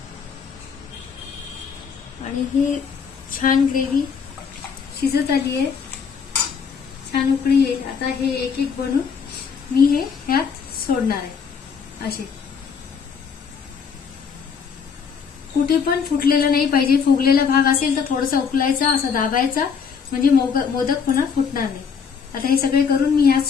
आणि ही छान ग्रेव्ही शिजत आली आहे, छान उकळी येईल. आता हे एक एक बनवून मी हे ह्यात सोडणार आहे. असे कुठे पण फुटलेलं नाही पाहिजे. फुगलेला भाग असेल तर थोडासा उकलायचा, असं दाबायचा, म्हणजे मोदक पुन्हा फुटणार नाही. आता हे सगळे करून मी ह्यात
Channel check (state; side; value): quieter; right; 6.3 dB